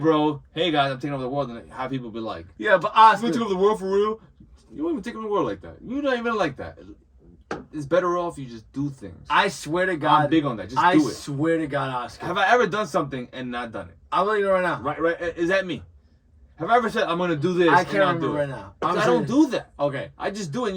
hey guys, I'm taking over the world, and have people be like, yeah, but Oscar, you take over the world for real? You won't even take over the world like that. You're not even like that. It's better off you just do things. I swear to God, I'm big on that. Just do it. I swear to God, Oscar. Have I ever done something and not done it? I'll let you know right now. Right. Is that me? Have I ever said I'm gonna do this? I can't remember right now. I don't do that. Okay. I just do it. And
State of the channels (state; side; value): identical; both; correlation 1.00